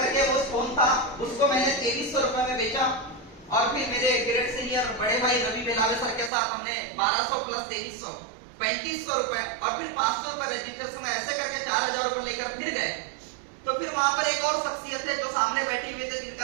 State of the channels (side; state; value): left; drops out; at 6.3 s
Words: वो फोन था, उसको मैंने 2300 रुपए में बेचा। और फिर मेरे ग्रेड सीनियर बड़े भाई रवि बेलावे सर के साथ हमने 1200 प्लस 2300 3500 रुपए और फिर 500 रुपए रजिस्ट्रेशन, ऐसे करके 4000 रुपए लेकर फिर गए। तो फिर वहां पर एक और शख्सियत है जो सामने बैठी हुई थे,